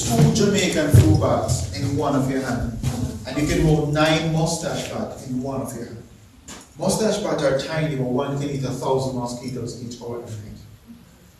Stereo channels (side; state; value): both; identical; correlation 1.00